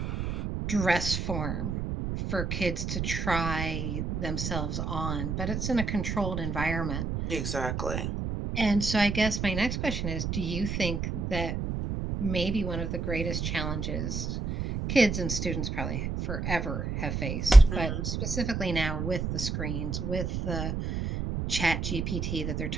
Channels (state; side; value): noise; right; rumble, 3 dB below the sound